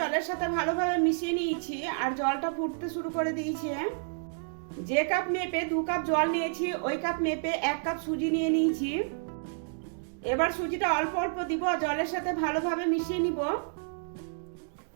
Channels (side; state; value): left; silent; digital silence